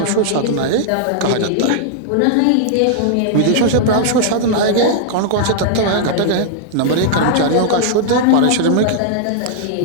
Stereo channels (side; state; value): both; different; correlation -0.01